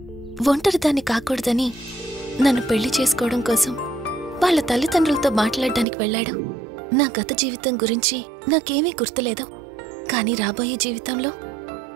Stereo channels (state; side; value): drops out; left; at 5.9 s